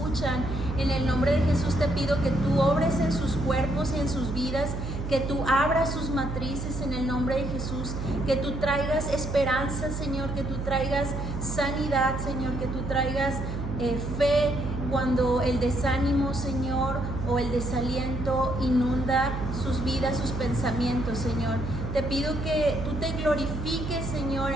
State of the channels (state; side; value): noise; right; hum, 5 dB below the sound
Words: En el nombre de Jesús te pido que tú obres en sus cuerpos y en sus vidas, que tú abras sus matrices en el nombre de Jesús, que tú traigas esperanza, Señor, que tú traigas sanidad, Señor, que tú traigas fe cuando el desánimo, Señor, o el desaliento inunda sus vidas, sus pensamientos, Señor. Te pido que tú te glorifiques, Señor,